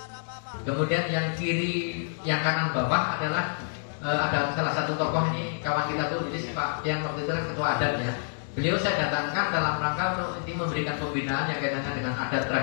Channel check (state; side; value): silent; right; digital silence